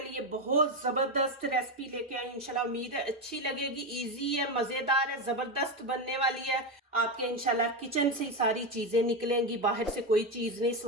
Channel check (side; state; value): both; normal; correlation 0.12